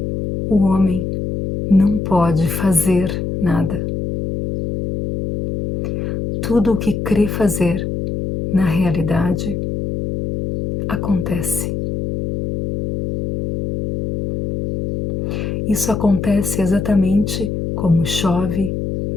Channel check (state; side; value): noise; left; hum, 3 dB below the sound